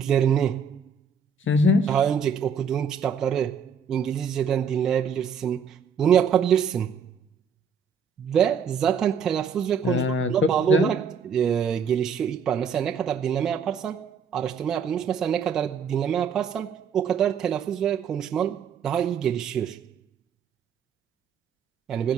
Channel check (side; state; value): left; quieter; 5.8 dB